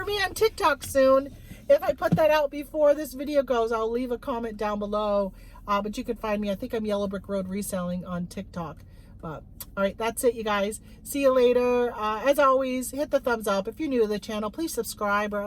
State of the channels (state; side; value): identical; both; correlation 1.00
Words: me on TikTok soon. If I put that out before this video goes, I'll leave a comment down below. But you can find me. I think I'm Yellow Brick Road Reselling on TikTok. But all right, that's it, you guys. See you later. As always, hit the thumbs up. If you're new to the channel, please subscribe, or